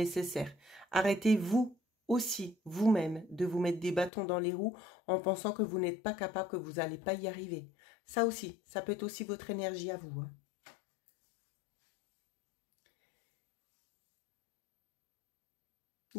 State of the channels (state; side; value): drops out; right; at 4.1 s